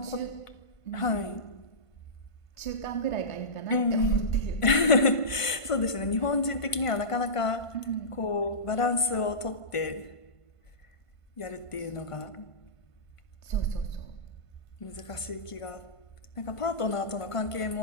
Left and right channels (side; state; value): right; late; 1.5 ms